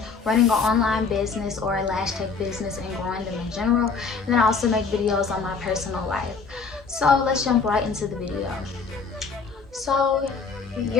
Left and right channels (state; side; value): quieter; right; 5.0 dB